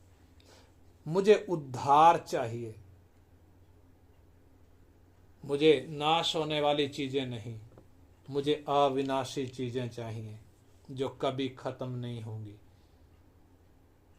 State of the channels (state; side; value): identical; both; correlation 1.00